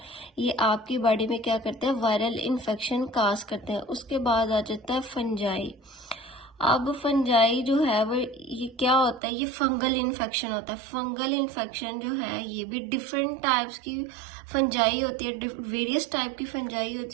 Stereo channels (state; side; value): drops out; left; at 9.2 s